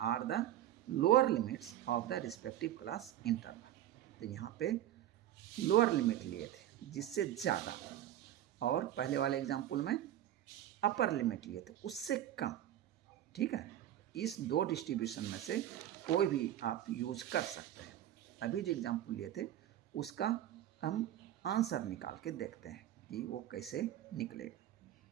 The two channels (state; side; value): quieter; left; 12.3 dB